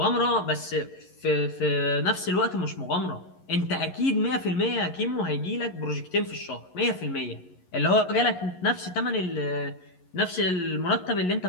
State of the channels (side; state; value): right; late; 11 ms